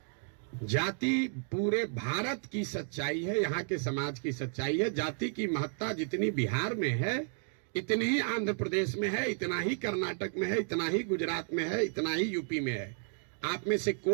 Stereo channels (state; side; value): silent; left; 56 dB below the other